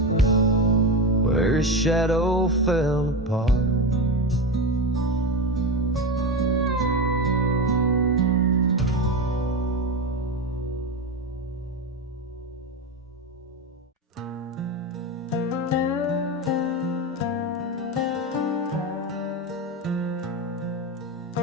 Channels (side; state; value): both; normal; correlation 0.18